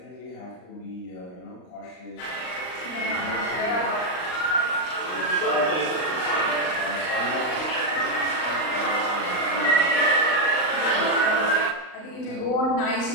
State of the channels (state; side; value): late; right; 39 ms